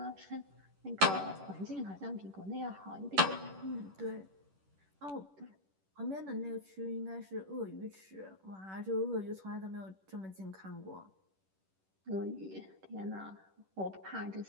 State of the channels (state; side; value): late; left; 10 ms